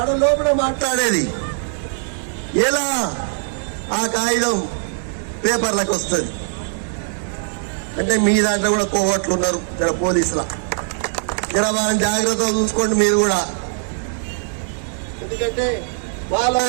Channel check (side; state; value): left; silent; digital silence